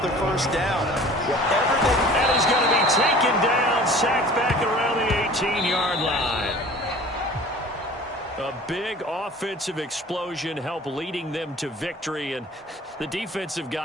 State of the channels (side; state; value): both; normal; correlation 0.45